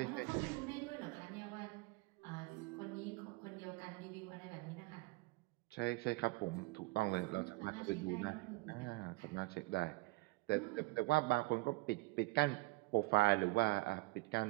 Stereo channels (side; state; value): left; quieter; 22.9 dB